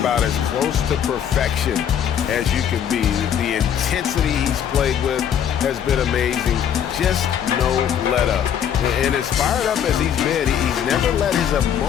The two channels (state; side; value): quieter; right; 9.0 dB